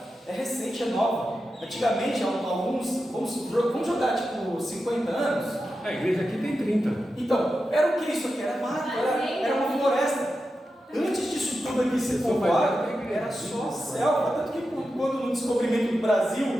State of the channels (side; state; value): both; normal; correlation 0.90